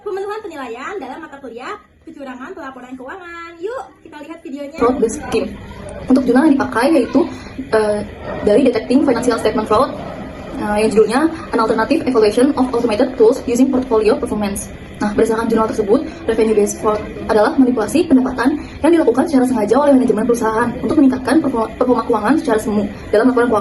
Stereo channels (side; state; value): both; identical; correlation 1.00